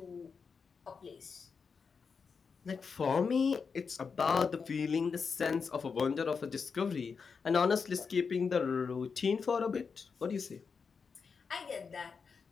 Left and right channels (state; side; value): quieter; right; 5.5 dB